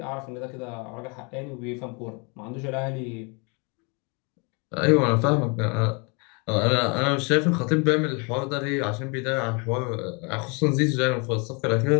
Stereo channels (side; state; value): right; quieter; 32.8 dB